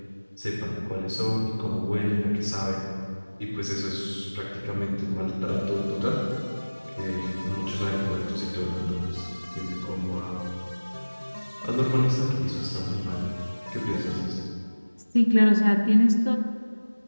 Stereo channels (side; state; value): both; inverted; correlation -1.00